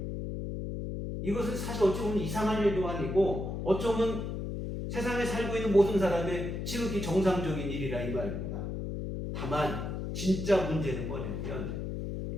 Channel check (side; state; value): left; noise; hum, 4 dB below the sound